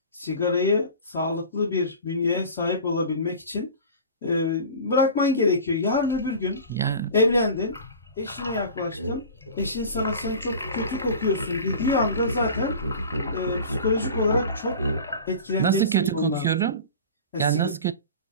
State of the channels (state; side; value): inverted; both; correlation -0.37